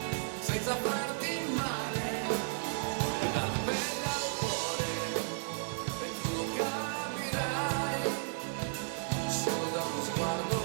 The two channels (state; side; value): silent; left; digital silence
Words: senza farti male. E dalla pelle al cuore, e tu lo capirai, solo da uno sguardo